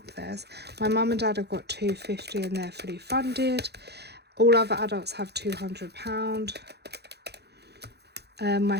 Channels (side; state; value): left; late; 0.48 ms